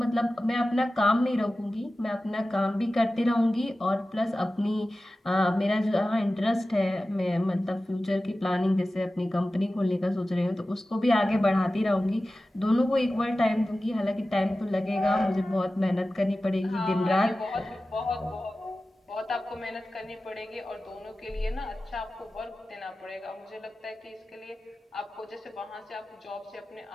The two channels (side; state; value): both; normal; correlation 0.95